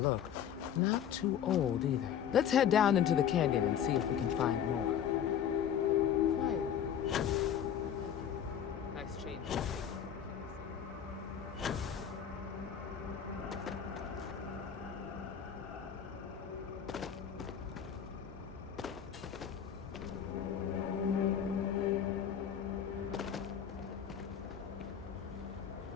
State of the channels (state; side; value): quieter; right; 8.8 dB